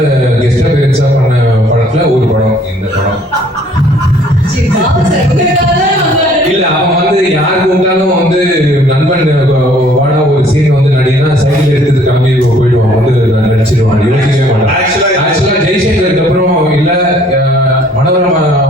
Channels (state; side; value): normal; both; correlation 0.59